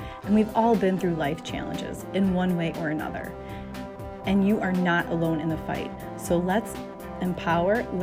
and we've all been through life challenges in one way or another. And you are not alone in the fight. So let's empower,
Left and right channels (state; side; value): identical; both; correlation 1.00